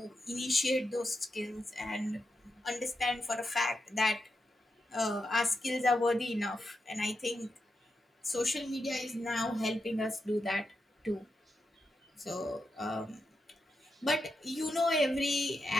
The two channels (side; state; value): both; normal; correlation 0.86